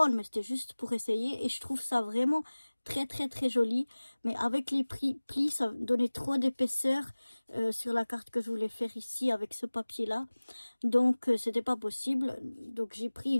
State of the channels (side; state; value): both; inverted; correlation -1.00